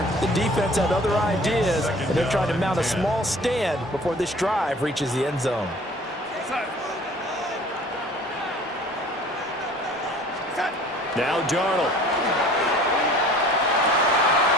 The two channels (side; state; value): both; normal; correlation 0.48